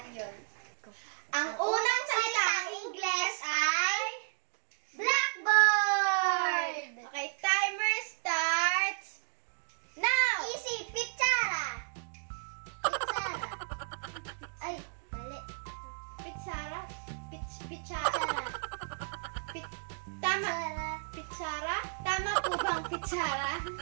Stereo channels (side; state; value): left; silent; digital silence